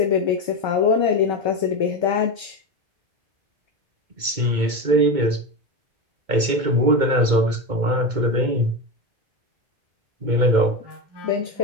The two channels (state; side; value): late; left; 2.2 ms